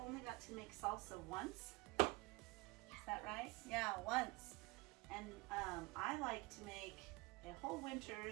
got to make salsa once. Is that right? Yeah, once. And I like to make a whole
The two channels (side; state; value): left; quieter; 23.5 dB